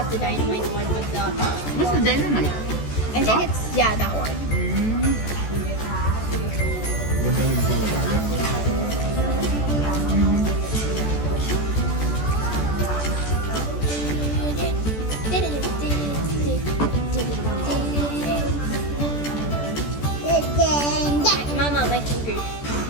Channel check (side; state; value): right; late; 14 ms